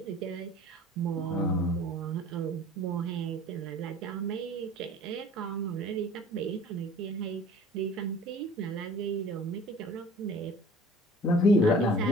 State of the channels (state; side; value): normal; both; correlation 0.46